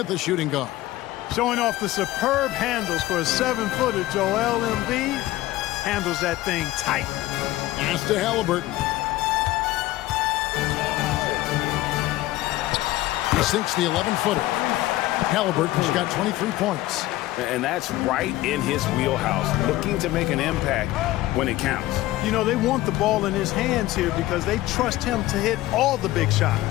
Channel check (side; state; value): right; quieter; 16.7 dB